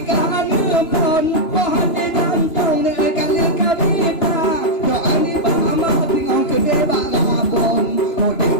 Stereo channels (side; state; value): right; late; 2.9 ms